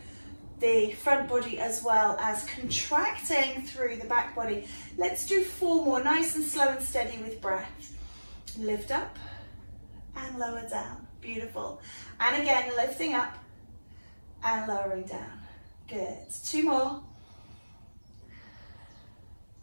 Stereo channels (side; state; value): both; inverted; correlation -1.00